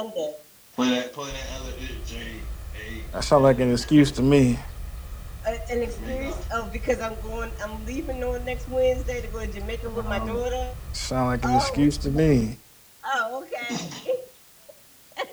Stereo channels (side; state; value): both; identical; correlation 1.00